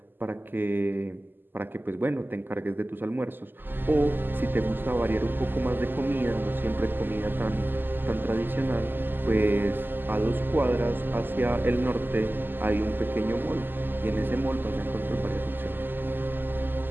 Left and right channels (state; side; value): late; left; 0.093 ms